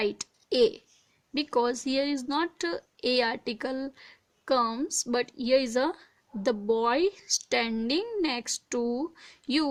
A. Because here is not A article comes, but here is the boy standing next to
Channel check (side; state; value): both; identical; correlation 1.00